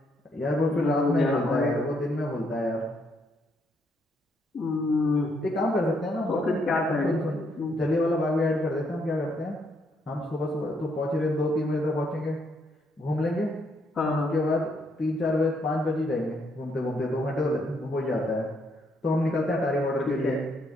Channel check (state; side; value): normal; both; correlation 0.73